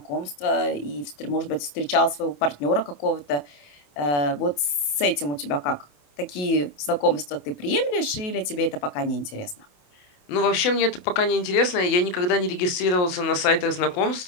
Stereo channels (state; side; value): late; right; 27 ms